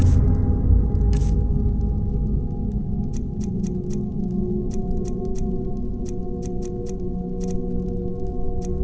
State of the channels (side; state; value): both; identical; correlation 1.00